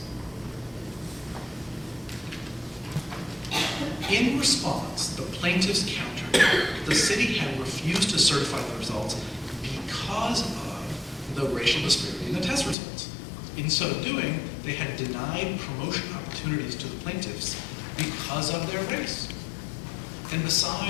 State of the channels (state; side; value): drops out; right; at 12.8 s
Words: In response, the plaintiffs countered that the city had refused to certify the results because of the racial disparity in the test results. In so doing, they had denied promotion opportunities to the plaintiffs because of their race. And